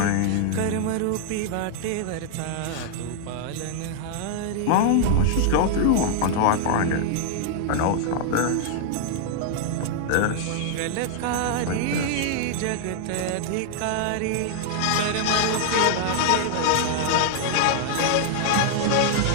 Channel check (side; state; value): both; different; correlation -0.01